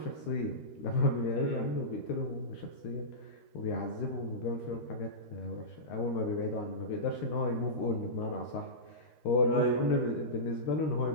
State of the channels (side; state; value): right; late; 13 ms